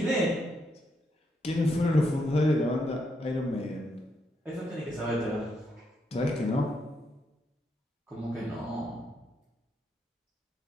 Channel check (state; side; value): normal; both; correlation 0.79